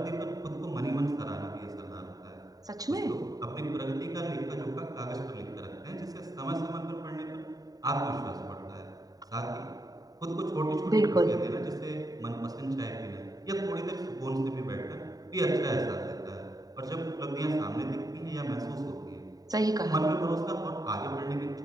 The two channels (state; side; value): late; left; 0.18 ms